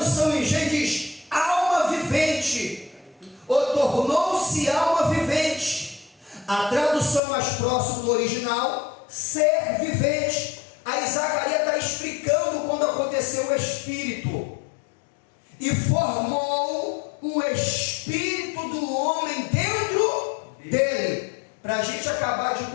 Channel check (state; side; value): drops out; right; at 7.2 s